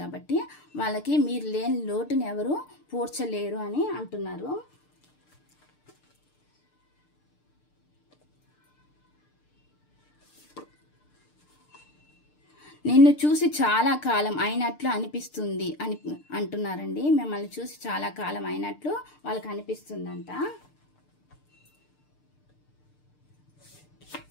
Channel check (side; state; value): right; late; 6.7 ms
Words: కాబట్టి వాళ్ళకి మీరు లేని లోటుని ఎవరు పూడ్చలేరు అని అంటున్నారు. నిన్ను చూసి చాలా కాలం అయినట్లు అనిపిస్తుంది అని అంటున్నారండి. మిమ్మల్ని చూసి చాలా కాలం అయినట్లు వాళ్ళకి అనిపిస్తుందంట.